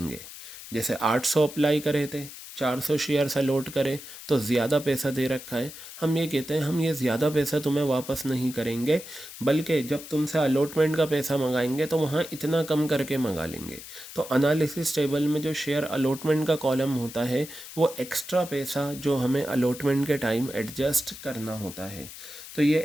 जैसे 800 अप्लाई करे थे, 400 शेयर्स अलॉट करे तो ज़्यादा पैसा दे रखा है, हम ये कहते हैं हम ये ज़्यादा पैसा तुम्हें वापस नहीं करेंगे, बल्कि जब तुमसे अलॉटमेंट का पैसा मंगाएंगे तो वहाँ इतना कम करके मंगा लेंगे। तो एनालिसिस टेबल में जो शेयर अलॉटमेंट का कॉलम होता है वो एक्स्ट्रा पैसा जो हमें अलॉटमेंट के टाइम एडजस्ट करना होता है। तो ये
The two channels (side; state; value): left; noise; hiss, 14 dB below the sound